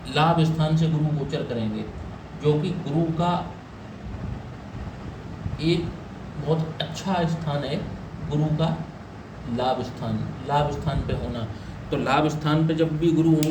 लाभ स्थान से गुरु गोचर करेंगे, जो कि गुरु का एक बहुत अच्छा स्थान है। गुरु का लाभ स्थान पे होना, तो लाभ स्थान पे जब भी गुरु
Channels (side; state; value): both; identical; correlation 1.00